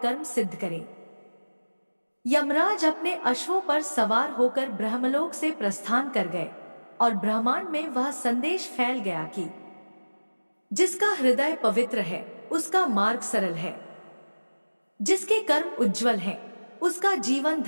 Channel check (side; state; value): both; inverted; correlation -1.00